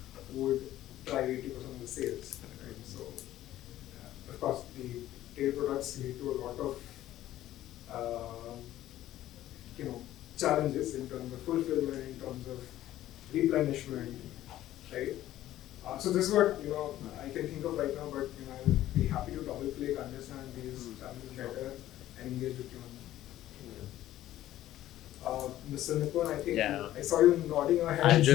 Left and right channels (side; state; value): right; quieter; 13.8 dB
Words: would drive 80% of the sales, right? So, of course, the tail products lead to a lot of, challenges in terms of fulfillment, in terms of replenishment, right? So this is what I can think of right now, but I'll be happy to double click, understand these challenges better, and engage with you on Mr. Nipun, I think I saw you nodding your head.